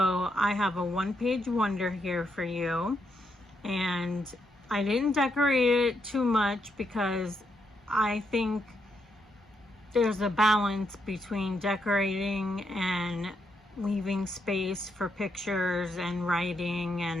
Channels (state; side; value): normal; both; correlation 0.79